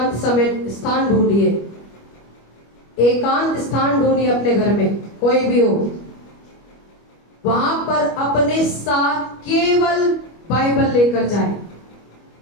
समय स्थान ढूंढिए, एकांत स्थान ढूंढिए अपने घर में, कोई भी हो, वहां पर अपने साथ केवल बाइबल लेकर जाए।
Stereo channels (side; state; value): right; late; 25 ms